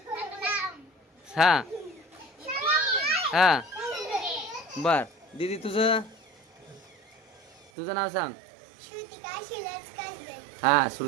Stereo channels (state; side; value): drops out; left; at 7.7 s